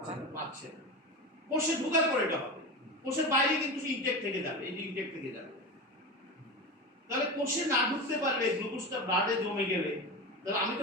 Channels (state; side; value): normal; both; correlation 0.24